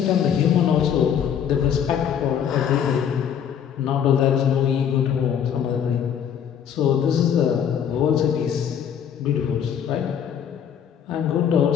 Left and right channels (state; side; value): quieter; right; 8.5 dB